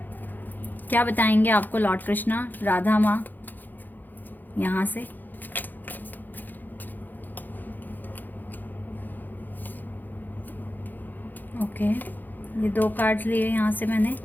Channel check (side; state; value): right; late; 0.087 ms